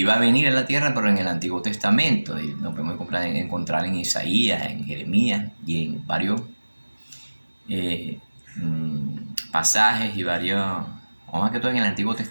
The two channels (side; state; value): both; inverted; correlation -1.00